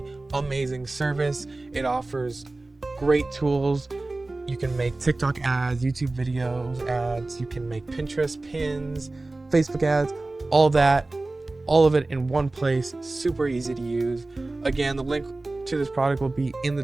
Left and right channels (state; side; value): quieter; left; 3.0 dB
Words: amazing service. It offers great tools. You can make TikTok ads, YouTube videos ads, you can make Pinterest pins, Facebook ads, all that, all of it in one place. Super easy to use. Again, the link to this product will be in the